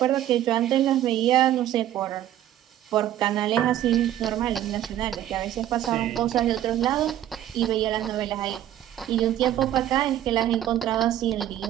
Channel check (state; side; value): quieter; left; 12.2 dB